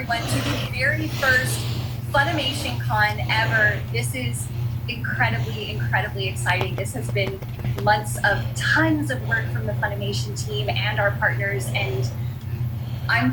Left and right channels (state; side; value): identical; both; correlation 1.00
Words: to the very first Funimation Con ever. This is incredibly exciting. This has been months of tons of work from the Funimation team and our partners, and I'm